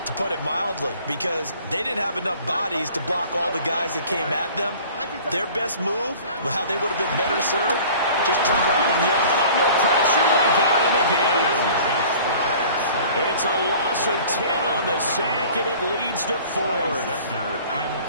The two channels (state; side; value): inverted; both; correlation -0.47